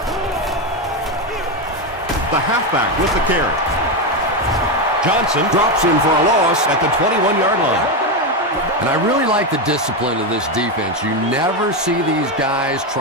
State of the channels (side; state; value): both; normal; correlation 0.10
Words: The halfback with the carry. Johnson drops him for a loss at the 21-yard line. And I really like the discipline of this defense. You never see these guys